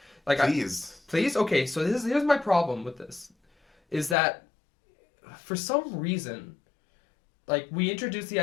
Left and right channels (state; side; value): drops out; right; at 4.2 s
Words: Like please. Okay, so here's my problem with this, is that for some reason, like we introduced the